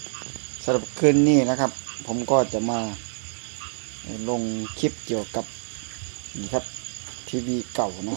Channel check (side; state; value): left; silent; digital silence